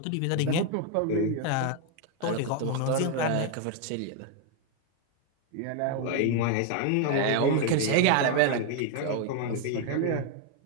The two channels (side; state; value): both; different; correlation 0.00